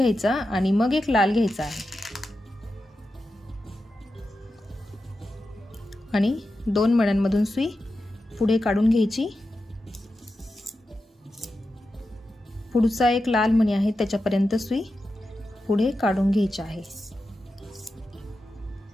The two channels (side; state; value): both; normal; correlation 0.91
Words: आणि मग एक लाल घ्यायचा आहे आणि 2 मण्यांमधून सुई पुढे काढून घ्यायची। पुढचा एक लाल मणी आहे त्याच्यापर्यंत सुई पुढे काढून घ्यायची आहे